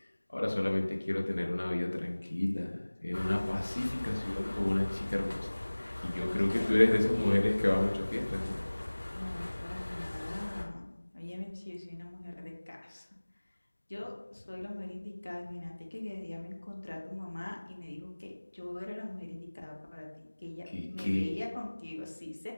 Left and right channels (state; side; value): inverted; both; correlation -1.00